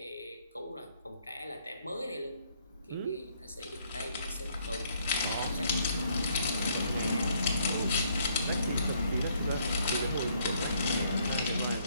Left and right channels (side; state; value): both; inverted; correlation -0.68